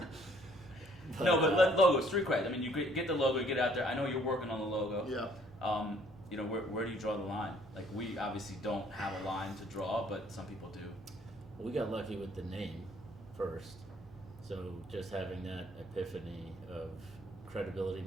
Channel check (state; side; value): normal; both; correlation 0.61